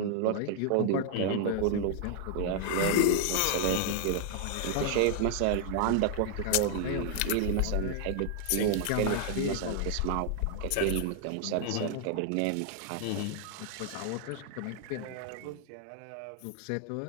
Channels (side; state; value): both; different; correlation 0.00